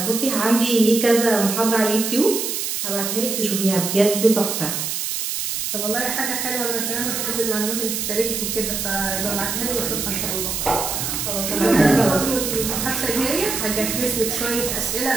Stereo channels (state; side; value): noise; right; hiss, 2 dB below the sound